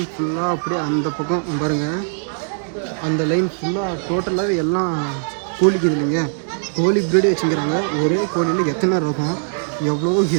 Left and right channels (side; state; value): left; silent; digital silence